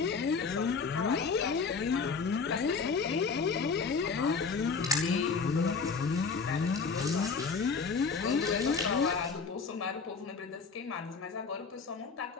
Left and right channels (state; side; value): quieter; right; 5.0 dB